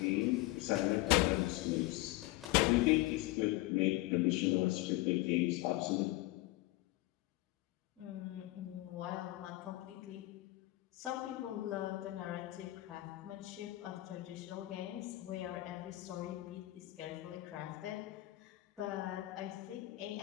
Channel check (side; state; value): right; quieter; 18.9 dB